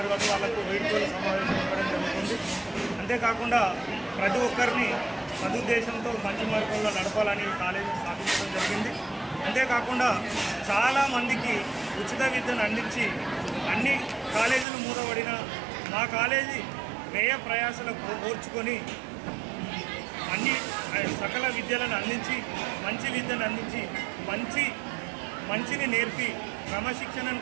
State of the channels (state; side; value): drops out; left; at 14.7 s